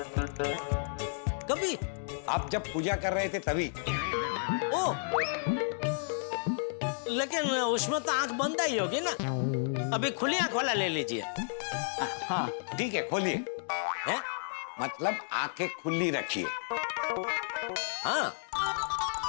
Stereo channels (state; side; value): silent; right; digital silence